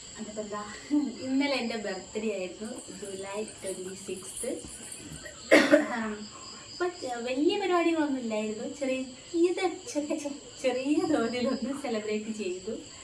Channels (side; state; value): both; identical; correlation 1.00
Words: അതിപ്പോൾ എന്താ, ഇന്നലെ എൻ്റെ ബർത്ത്ഡേ ആയിരുന്നു, ജൂലൈ 26. അപ്പം വലിയ പരിപാടികളൊന്നും ഇല്ലായിരുന്നു, ചെറിയ തോതിലൊന്ന് സെലിബ്രേറ്റ് ചെയ്തു.